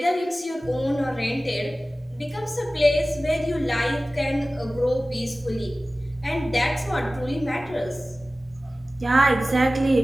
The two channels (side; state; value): both; normal; correlation 0.96